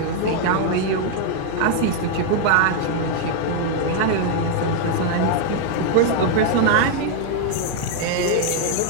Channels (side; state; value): both; different; correlation 0.00